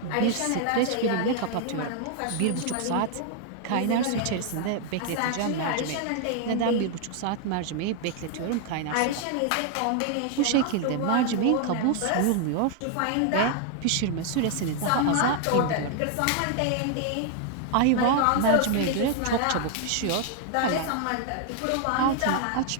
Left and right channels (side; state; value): both; different; correlation 0.00